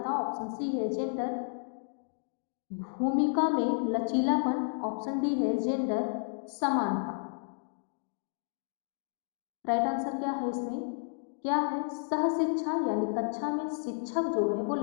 ऑप्शन सी है जेंडर भूमिका में लचीलापन। ऑप्शन डी है जेंडर समानता। राइट आंसर क्या है इसमें? क्या है? सह शिक्षा यानी कक्षा में शिक्षक जो है वो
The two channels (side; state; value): right; silent; digital silence